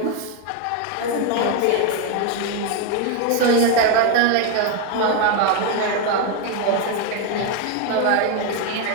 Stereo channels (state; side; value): different; both; correlation 0.01